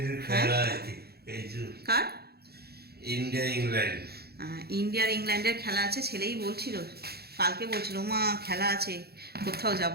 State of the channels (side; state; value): left; late; 0.46 ms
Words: কার ইন্ডিয়ার ইংল্যান্ডের খেলা আছে। ছেলেই বলছিল, কালকে বলছিল মা খেলা আছে, কোথাও যাব